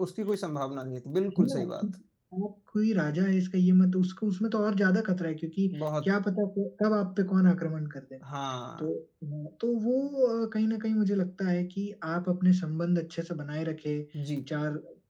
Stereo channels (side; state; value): both; identical; correlation 1.00